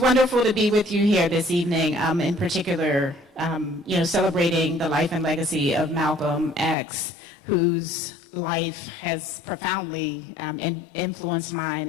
to be with you here this evening, in particular, celebrating the life and legacy of Malcolm X, whose life has profoundly influenced mine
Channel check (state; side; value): drops out; right; at 6.8 s